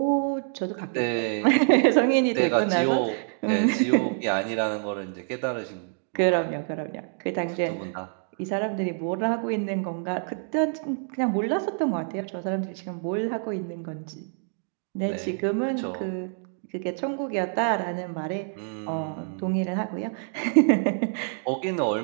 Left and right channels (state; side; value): silent; left; 57 dB below the other